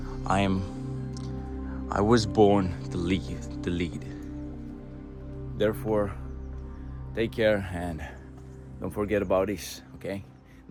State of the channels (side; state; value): both; identical; correlation 1.00